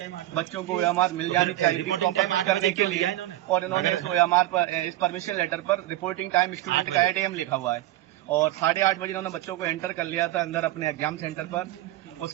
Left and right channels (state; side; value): quieter; left; 15.4 dB